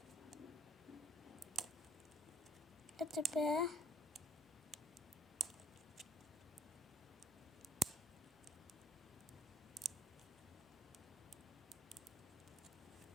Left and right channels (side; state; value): both; normal; correlation 0.58